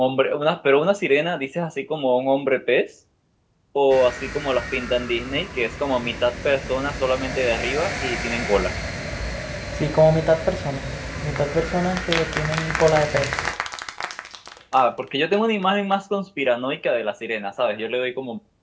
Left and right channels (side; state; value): both; identical; correlation 1.00